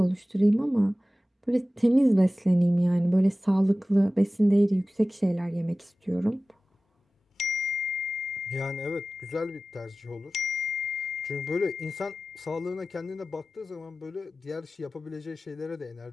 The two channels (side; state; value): both; normal; correlation 0.96